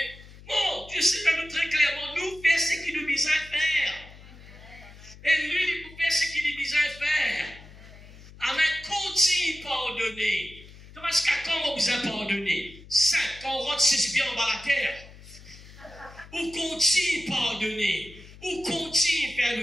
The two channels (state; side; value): noise; left; hum, 19 dB below the sound